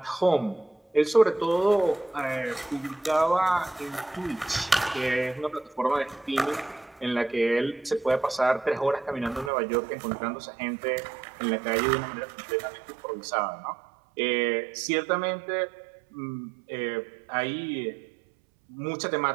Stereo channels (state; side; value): drops out; left; at 9.5 s